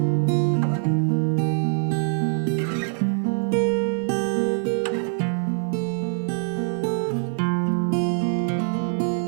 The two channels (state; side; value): silent; left; 57 dB below the other